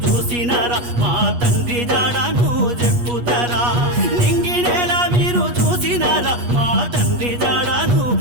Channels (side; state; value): left; late; 8.3 ms